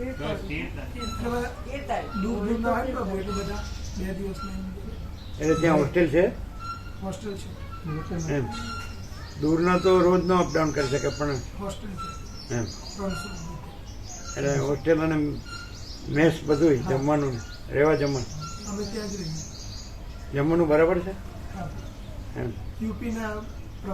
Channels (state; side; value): identical; both; correlation 1.00